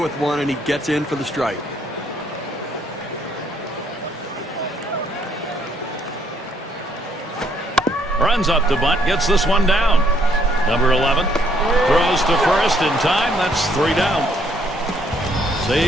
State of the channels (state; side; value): normal; both; correlation 0.68